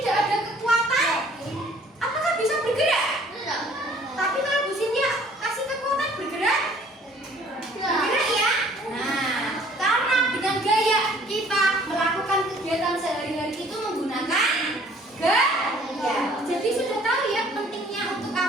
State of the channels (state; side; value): normal; both; correlation 0.56